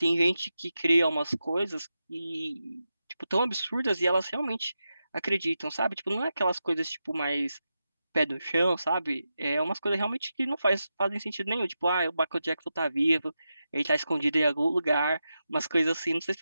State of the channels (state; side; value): inverted; both; correlation -0.89